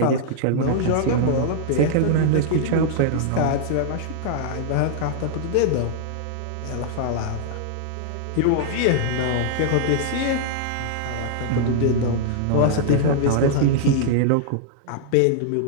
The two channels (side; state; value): both; different; correlation -0.01